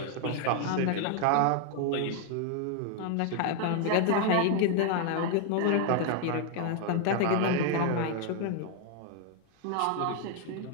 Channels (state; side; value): different; both; correlation 0.01